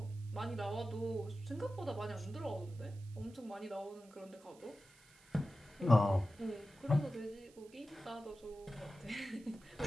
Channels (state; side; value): noise; right; hiss, 26 dB below the sound